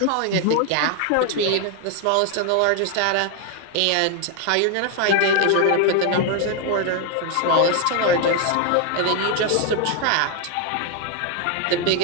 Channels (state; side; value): different; both; correlation 0.01